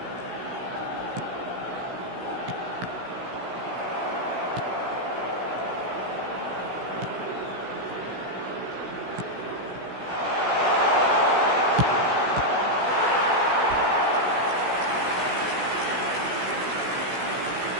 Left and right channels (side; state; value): left; late; 16 ms